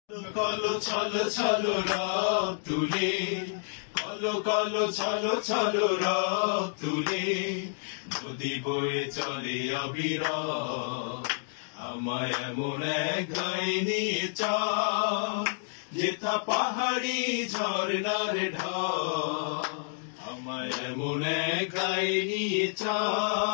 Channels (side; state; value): right; silent; digital silence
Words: কলো ছলো ছলো রব তুলে, কলো কলো ছলো ছলো রব তুলে, নদী বয়ে চলে অবিরাম। আমায় এমন এক গায়ে নিয়ে চল, যেথা পাহাড়ি ঝর্ণার ঢল। আমায় এমন এক গায়ে নিয়ে